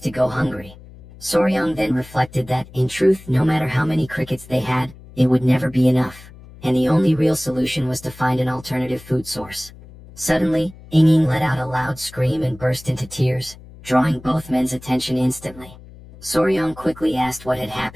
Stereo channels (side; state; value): left; noise; hum, 20 dB below the sound